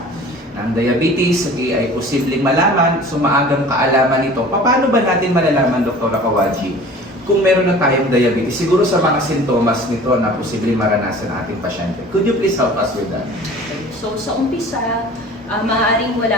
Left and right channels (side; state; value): both; normal; correlation 0.44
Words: Ang diabetes, ay posibleng malaman, maagang kaalaman nito. Paano ba natin malalaman, Doktora Kawaji, kung meron na tayong diabetes, siguro sa mga sintomas nito na posibleng maranasan ng ating pasyente? Could you please help us with that? So sa umpisa, maaaring